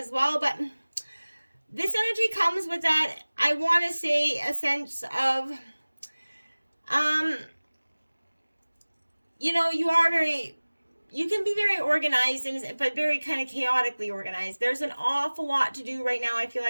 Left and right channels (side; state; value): both; inverted; correlation -1.00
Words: well. But this energy comes with that, I want to say, a sense of You know, you can be very organized, but very kind of chaotically organized. There's an awful lot to do right now. I feel